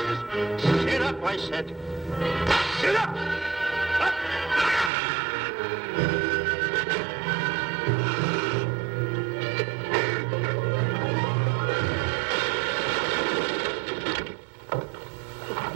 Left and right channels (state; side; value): drops out; left; at 4.9 s